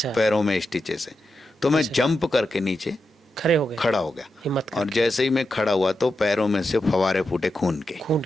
पैरों में स्टिचेस से। तो मैं अच्छा। जंप करके नीचे खड़े हो गए। खड़ा हो गया, हिम्मत और करके। जैसे ही मैं खड़ा हुआ तो पैरों में से फवारे फूटे खून के। खून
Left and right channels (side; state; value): both; normal; correlation 0.88